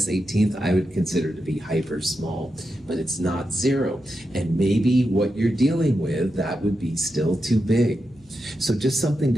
18th, I would consider to be hyper small, but it's not zero. And maybe what you're dealing with, that would be still too big. So just something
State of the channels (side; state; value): right; noise; hum, 29 dB below the sound